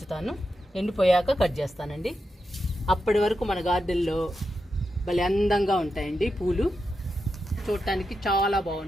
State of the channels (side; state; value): both; normal; correlation 0.87